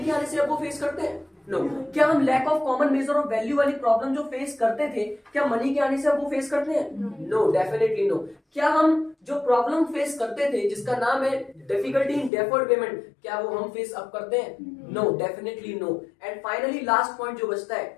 आने से अब वो फेस करते हैं? नो। क्या हम lack of common measure of value वाली प्रॉब्लम जो फेस करते थे, क्या मनी के आने से अब वो फेस करते हैं? No, definitely no. क्या हम जो प्रॉब्लम फेस करते थे जिसका नाम है डिफिकल्टी इन डेफर्ड पेमेंट, क्या वो हम फेस अब करते हैं? No, definitely no. And finally last point जो बचता है,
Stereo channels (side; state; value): right; drops out; at 12.3 s